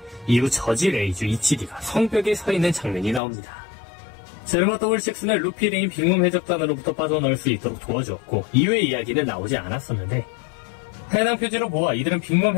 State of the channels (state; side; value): drops out; right; at 3.2 s